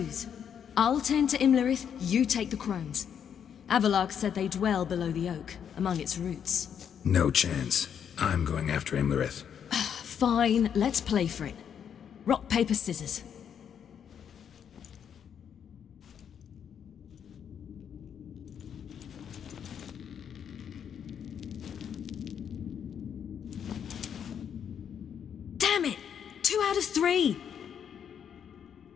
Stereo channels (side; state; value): right; quieter; 8.2 dB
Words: I'll tend to Imlerith, you take the crones. Avalark said they dwell below the oak, among its roots. No chance. I'm going after Imlerith. Fine, let's play for it. Rock, paper, scissors. Damn it! 2 out of 3!